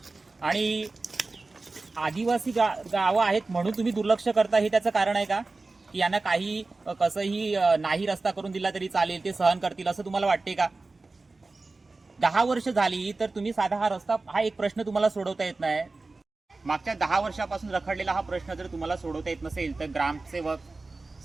आणि आदिवासी गावं आहेत म्हणून तुम्ही दुर्लक्ष करता, हे त्याचं कारण आहे का की यांना काही कसंही नाही रस्ता करून दिला तरी चालेल, ते सहन करतील असं तुम्हाला वाटते का? 10 वर्ष झाली तर तुम्ही साधा हा एक प्रश्न तुम्हाला सोडवता येत नाही। मागच्या 10 वर्षापासून रखडलेला हा प्रश्न जर तुम्हाला सोडवता येत नसेल तर ग्रामसेवक,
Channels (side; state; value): left; quieter; 3.5 dB